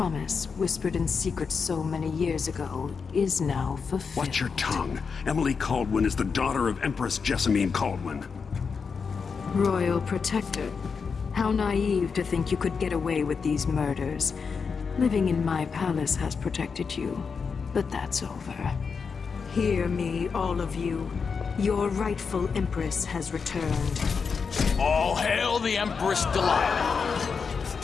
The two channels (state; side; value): quieter; right; 5.5 dB